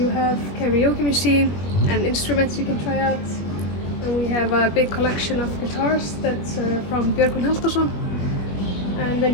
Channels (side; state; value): right; late; 21 ms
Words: have karaoke machine and instruments you can try out. And we have a big collection of guitars that's from Björgvin Halldórsson. And then